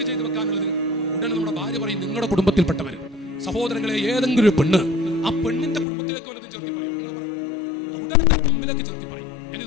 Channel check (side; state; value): right; drops out; at 5.9 s